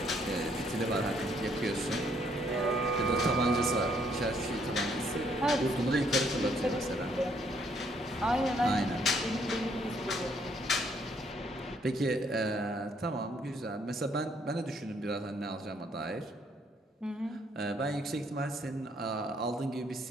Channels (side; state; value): both; normal; correlation 0.68